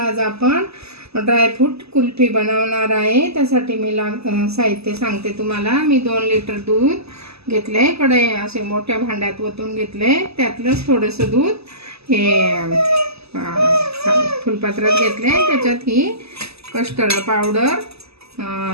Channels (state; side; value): late; left; 0.79 ms